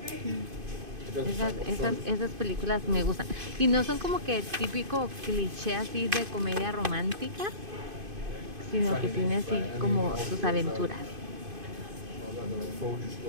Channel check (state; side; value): late; left; 2.5 ms